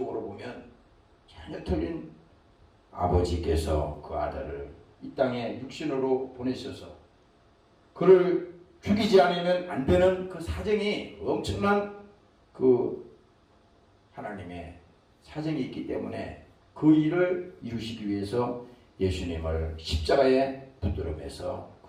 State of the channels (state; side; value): identical; both; correlation 1.00